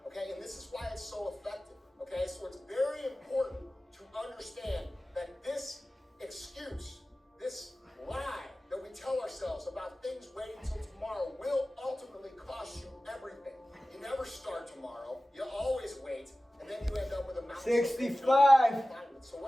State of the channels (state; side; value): normal; both; correlation 0.96